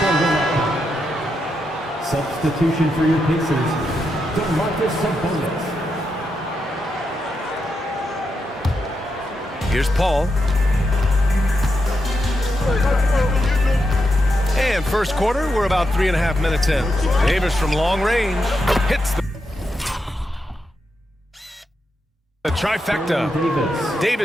Substitution for your Pacers. DeMarcus Sabonis. Here's Paul. And first quarter, we're about 3.5 minutes in. Davis from long range hits the trifecta.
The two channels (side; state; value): both; normal; correlation 0.84